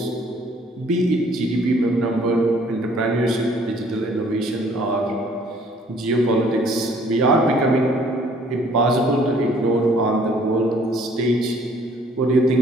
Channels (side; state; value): both; normal; correlation 0.59